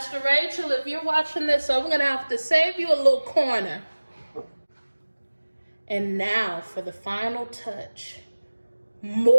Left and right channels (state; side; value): inverted; both; correlation -1.00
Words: Rachel, if you're watching this, I'm gonna have to save you a little corner. And now for the final touch.